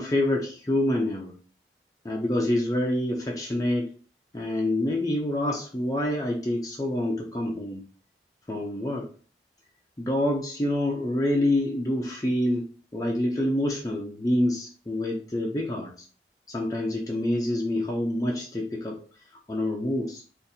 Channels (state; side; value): normal; both; correlation 0.83